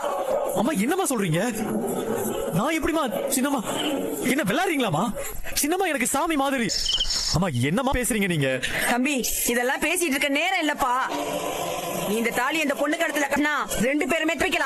அம்மா என்னம்மா சொல்றீங்க? நான் எப்படிமா சின்னம்மா? என்ன விளையாடுறீங்களாமா? சின்னம்மா எனக்கு சாமி மாதிரி. அம்மா என்னம்மா பேசுறீங்க நீங்க? தம்பி, இதெல்லாம் பேசிட்டு இருக்க நேரம் இல்லப்பா. நீ இந்த தாலி இந்த பொண்ணு கடத்துல கட்டினா 2 பேருமே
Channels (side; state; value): both; identical; correlation 1.00